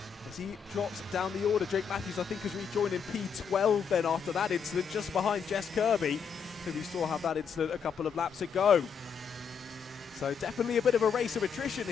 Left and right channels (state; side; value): quieter; right; 6.7 dB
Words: As he drops down the order, Jake Matthews, I think, has rejoined in P12 then after that incident, just behind Jess Kirby, who we saw have that incident a couple of laps ago. So definitely a bit of a race of attrition